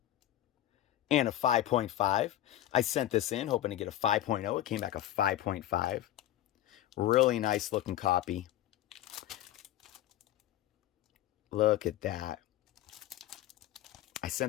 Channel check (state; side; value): quieter; right; 13.4 dB